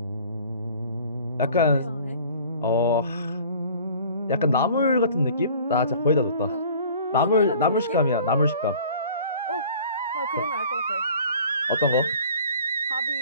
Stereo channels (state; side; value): inverted; both; correlation -0.48